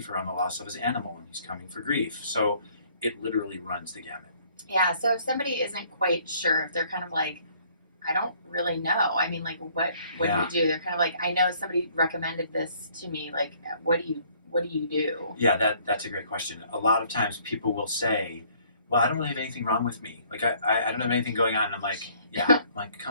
around the loss of his animal, and he's coming for grief. So it literally runs the gamut. Yeah, so if somebody isn't quite sure, if they're kind of like, I don't really know. I mean, like, what do you do? They're kind of like, I know somebody recommended this to me. Like, what do you do? Yeah, that's a great question. A lot of times people will say, well, I don't really have anything wrong with me. Like, I don't have anything going on. And I'm like,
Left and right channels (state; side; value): inverted; both; correlation -0.61